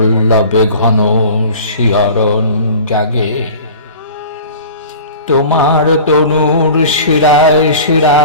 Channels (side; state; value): both; inverted; correlation -0.40